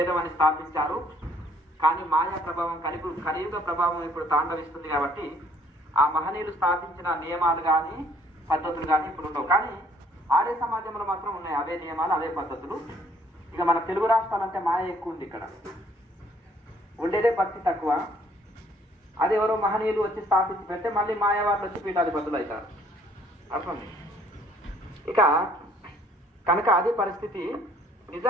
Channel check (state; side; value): normal; both; correlation 0.61